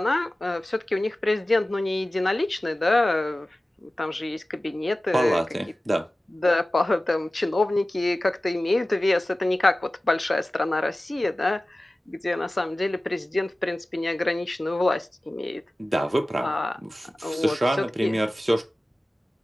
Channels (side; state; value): both; normal; correlation 0.96